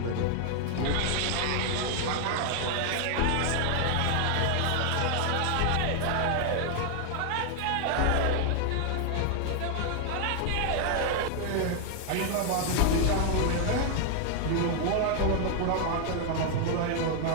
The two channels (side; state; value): both; different; correlation 0.00